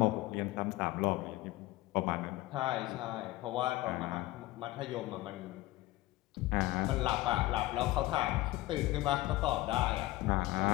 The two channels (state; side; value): quieter; right; 17.9 dB